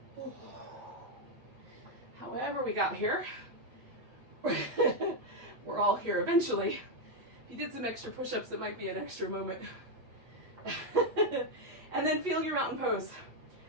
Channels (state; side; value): late; left; 8.4 ms